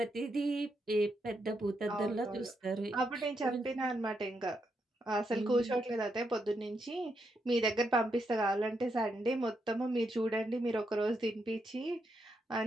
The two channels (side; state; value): both; normal; correlation 0.81